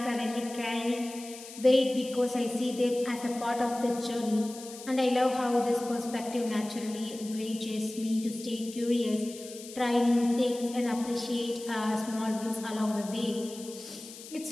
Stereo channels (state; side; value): noise; left; hiss, 15 dB below the sound